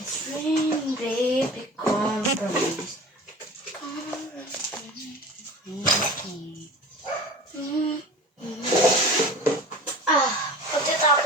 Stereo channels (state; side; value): normal; both; correlation 0.38